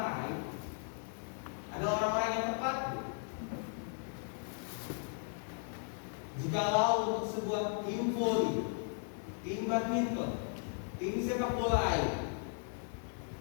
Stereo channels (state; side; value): silent; right; 53 dB below the other